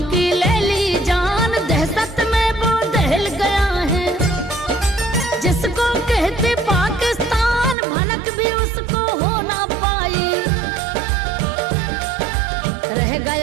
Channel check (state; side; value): drops out; left; at 7.8 s